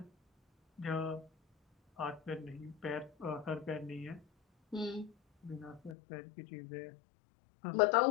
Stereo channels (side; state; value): right; drops out; at 6.0 s